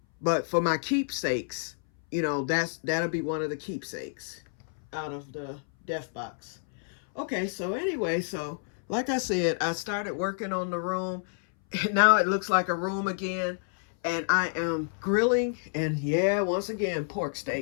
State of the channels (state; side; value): silent; right; 59 dB below the other